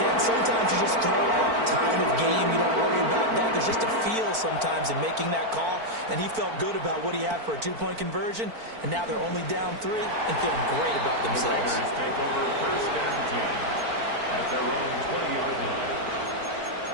and sometimes you just throw out time of game. You don't worry about that. There's just a feel sometimes in making that call. And he felt good about what he had for a 2-point conversion. And now they're only down 3 and feeling great about themselves. The Raiders take over 1st and 10 at their own 20-yard line.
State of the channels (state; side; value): late; left; 4.5 ms